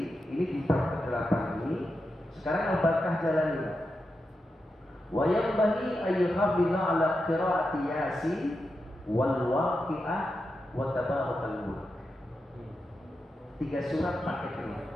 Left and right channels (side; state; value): both; normal; correlation 0.88